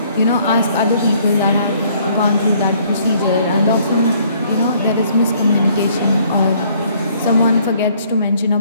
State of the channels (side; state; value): both; inverted; correlation -0.62